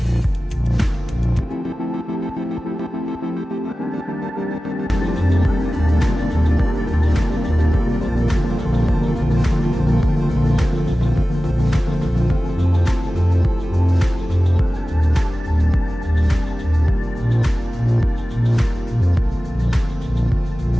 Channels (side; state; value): both; normal; correlation 0.96